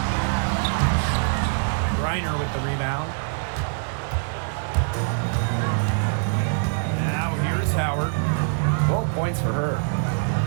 Reiner with the rebound. Now here's Howard. 12 points for her.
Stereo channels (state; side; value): silent; left; digital silence